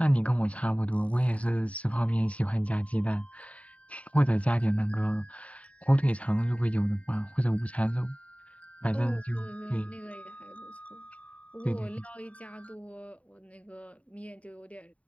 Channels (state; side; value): late; right; 0.066 ms